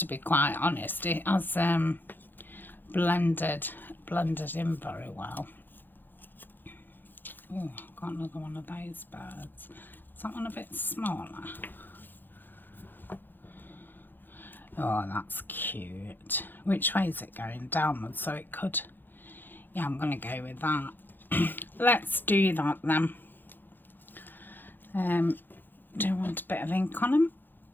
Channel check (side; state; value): right; late; 0.092 ms